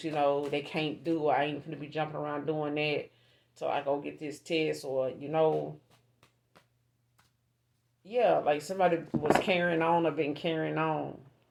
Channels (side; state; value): both; identical; correlation 1.00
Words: they can't do. Or I ain't gonna be jumping around doing that till I go get this test, or yeah, like somebody was carrying on or been carrying on.